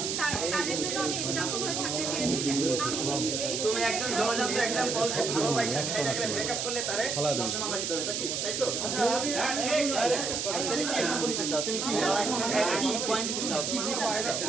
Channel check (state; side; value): noise; right; hiss, 1 dB below the sound